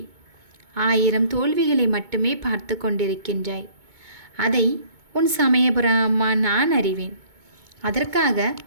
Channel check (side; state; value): left; late; 2.2 ms